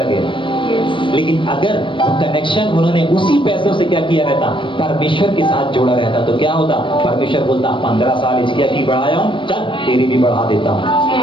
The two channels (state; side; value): late; right; 0.24 ms